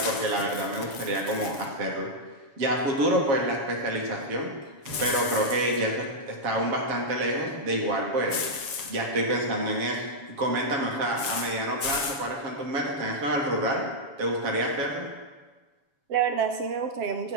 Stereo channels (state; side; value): late; left; 7.2 ms